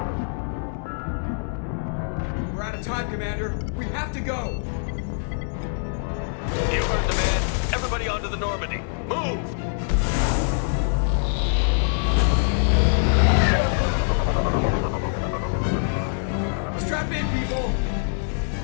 We're out of time, Commander. We have to go. You heard the man. Everybody onto the Normandy. Move! Strap in, people.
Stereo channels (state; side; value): silent; right; 62 dB below the other